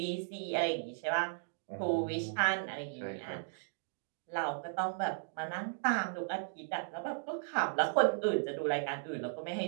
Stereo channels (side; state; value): left; silent; digital silence